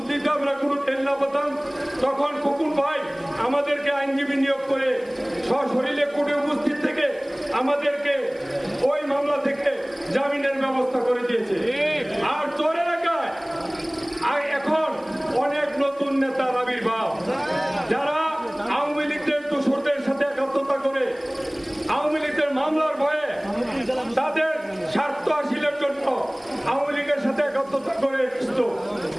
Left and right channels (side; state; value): right; noise; hiss, 29 dB below the sound